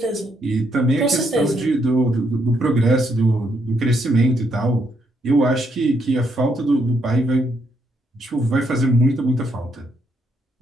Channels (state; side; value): normal; both; correlation 0.75